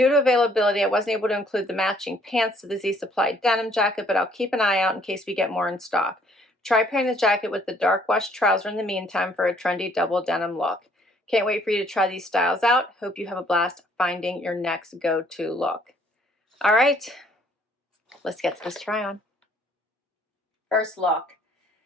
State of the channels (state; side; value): normal; both; correlation 0.62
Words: to availability, I wasn't able to include the matching pants to the Z Supply denim jacket, but I'll keep an eye out in case we get more in stock. Try pairing the jacket with the dark wash trouser in the meantime for a trendy double denim look. Can't wait for you to try these styles out. Hope you have a blast finding your next go-to look. All right, let's get to this try on. First look.